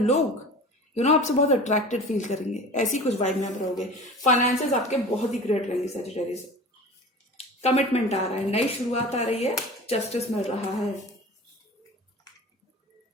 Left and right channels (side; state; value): both; normal; correlation 0.38